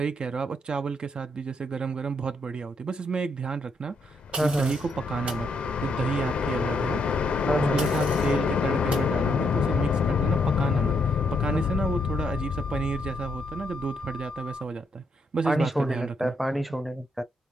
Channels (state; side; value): normal; both; correlation 0.76